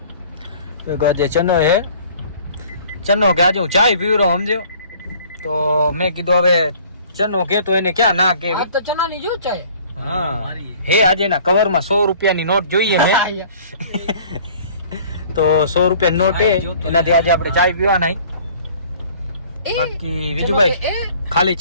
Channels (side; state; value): both; inverted; correlation -0.52